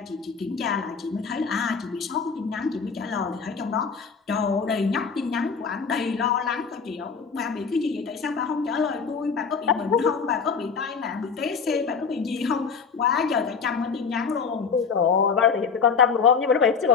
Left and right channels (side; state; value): right; quieter; 5.6 dB